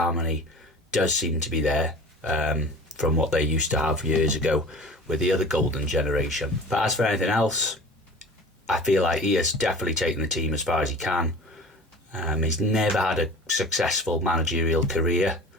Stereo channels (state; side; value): normal; both; correlation 0.40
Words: does seem to be there from what they used to have years ago with the other golden generation. But as for anything else, I feel like he has definitely taken the team as far as he can. He's never had a successful managerial career,